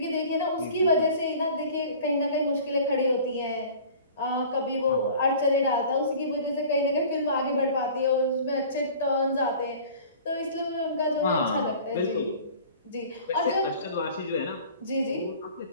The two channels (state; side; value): inverted; both; correlation -0.44